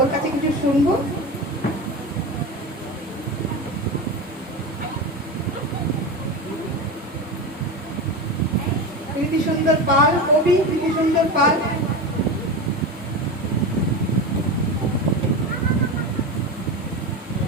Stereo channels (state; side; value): normal; both; correlation 0.23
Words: কাছে কিছু শুনবো। কীর্তি সুন্দর পাল, কবি কীর্তি সুন্দর পাল।